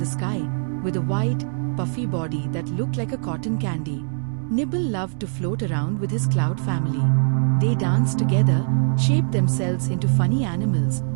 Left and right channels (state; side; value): silent; left; 64 dB below the other